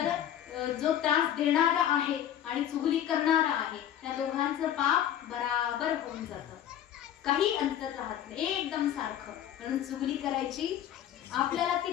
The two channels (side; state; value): right; quieter; 10.8 dB